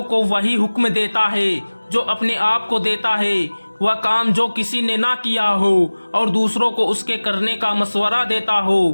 کو وہی حکم دیتا ہے جو اپنے آپ کو دیتا ہے، وہ کام جو کسی نے نہ کیا ہو اور دوسروں کو اس کے کرنے کا مشورہ دیتا ہو،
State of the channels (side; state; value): both; inverted; correlation -1.00